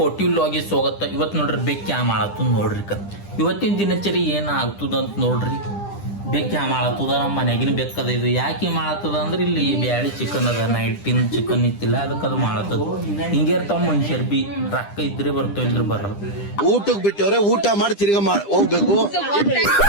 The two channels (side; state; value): right; late; 10 ms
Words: ವ್ಲಾಗಿಗೆ ಸ್ವಾಗತ. ಇವತ್ತು ನೋಡ್ರಿ ಬೇಕ್ ಕ್ಯಾ ಮಾಡತ್ತದ ನೋಡ್ರಿ. ಇವತ್ತಿನ ದಿನಚರಿ ಏನು ಆಗ್ತದ ಅಂತ ನೋಡ್ರಿ. ಬೇಕ್ ಕ್ಯಾ ಮಾಡತ್ತದ, ನಮ್ಮ ಮನೆಗಿನ ಬೆಕ್ಕದ. ಇದು ಯಾಕೆ ಮಾಡತ್ತದ ಅಂದ್ರೆ ಇಲ್ಲಿ ಬ್ಯಾಳಿ ಚಿಕನ್ ಅದ, ನೈಟಿನ ಚಿಕನ್ ಇತ್ತಿಲ್ಲ, ಅದಕ್ಕೆ ಅದು ಮಾಡತ್ತದ. ಹಿಂಗೆ ಇರ್ತಾವ ಮನುಷ್ಯರ್ ಬಿ, ರೊಕ್ಕ ಇದ್ರೆ ಬರ್ತಾವ ಇದ್ರೆ ಬರಲ್ಲ. ಊಟಕ್ಕೆ ಬಿಟ್ಟವ್ರೆ, ಊಟ ಮಾಡಿ ತಿರ್ಗ ಹೋಗ್ಬೇಕು.